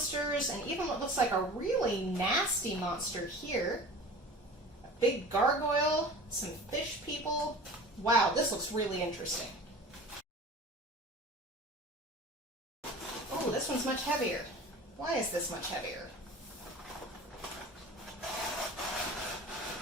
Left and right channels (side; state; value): both; normal; correlation 0.39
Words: and even what looks like a really nasty monster here. A big gargoyle, some fish people. Wow, this looks really interesting. Oh, this one's much heavier. Why is this much heavier?